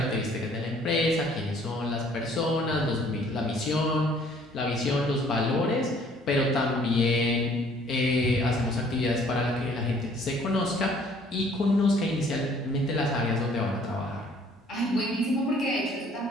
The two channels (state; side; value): normal; both; correlation 0.58